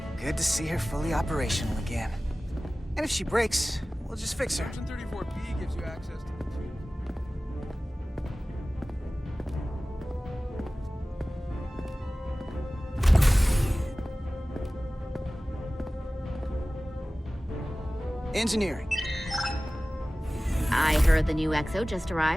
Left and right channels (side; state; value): both; normal; correlation 0.97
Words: Good to see her fully operational again. And if she breaks, we'll just fix her. Section 34B gives you access to Engineering. I heard the new XO just